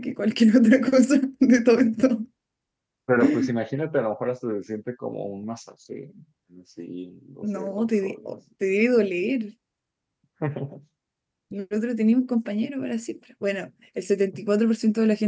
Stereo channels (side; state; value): both; identical; correlation 1.00